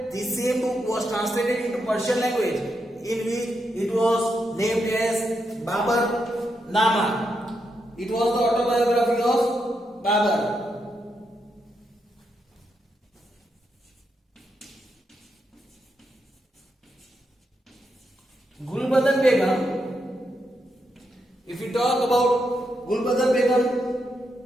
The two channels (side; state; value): both; normal; correlation 0.82